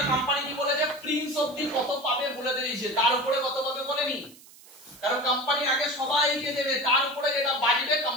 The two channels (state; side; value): noise; right; hiss, 22 dB below the sound